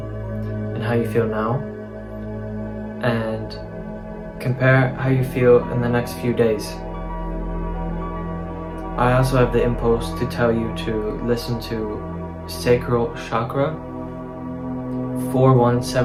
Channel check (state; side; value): identical; both; correlation 1.00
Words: and how you feel now, and compare how you feel in the next few days. I also have the impulse to tell you to listen to Sacral Chakra